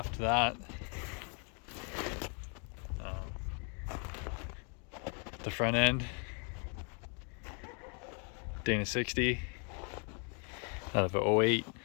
that. The front end, Dana 60 out of a 08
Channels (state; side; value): quieter; right; 38.7 dB